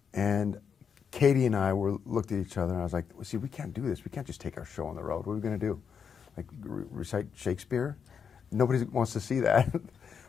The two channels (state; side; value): quieter; right; 6.8 dB